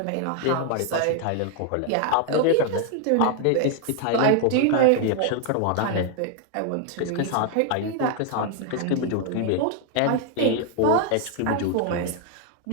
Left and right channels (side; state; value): both; different; correlation 0.00